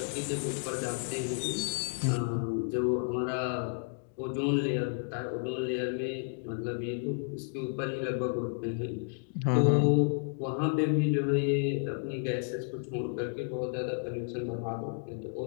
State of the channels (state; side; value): silent; right; digital silence